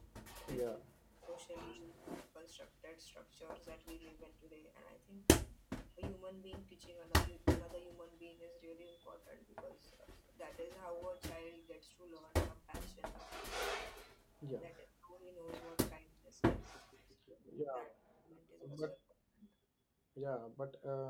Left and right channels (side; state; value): both; identical; correlation 1.00